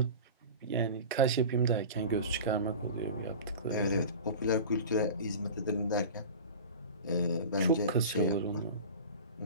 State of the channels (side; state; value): both; inverted; correlation -0.34